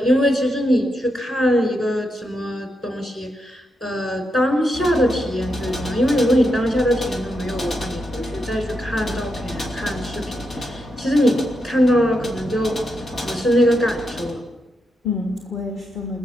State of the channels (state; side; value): normal; both; correlation 0.84